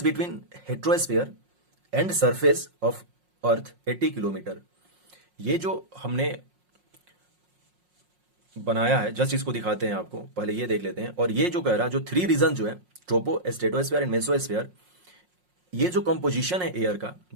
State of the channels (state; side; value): late; left; 5.5 ms